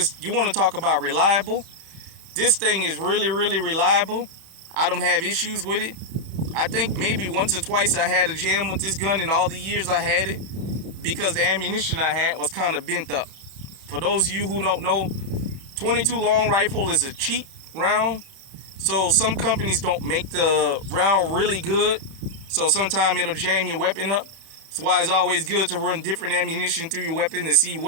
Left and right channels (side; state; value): left; late; 31 ms